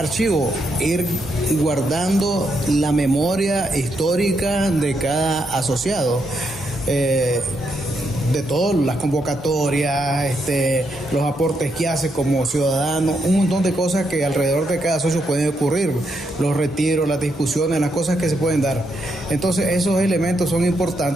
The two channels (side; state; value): both; normal; correlation 0.79